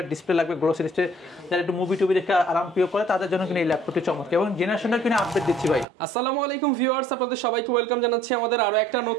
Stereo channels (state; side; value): drops out; left; at 5.9 s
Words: ডিসপ্লে লাগবে, গ্লোসি ডিসপ্লে, যারা একটু মুভি টুবি দেখে আরাম প্রিয় করে তাদের জন্য কিন্তু এই ল্যাপটপটি চমৎকার এবং জেনারেশনটা কিনে আপডেট দিচ্ছি ভাই। আসসালামু আলাইকুম ভিউয়ার্স, আপনাদের সবাইকে ওয়েলকাম জানাচ্ছি আমাদের আরো একটা